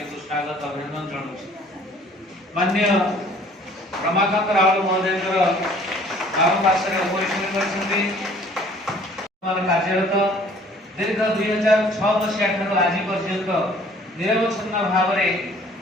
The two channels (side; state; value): both; normal; correlation 0.55